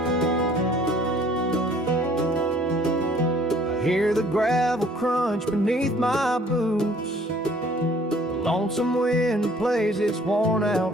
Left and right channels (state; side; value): normal; both; correlation 0.57